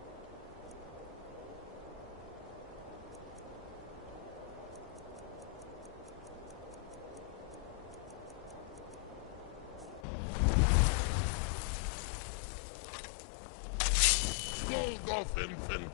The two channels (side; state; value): right; drops out; at 10.1 s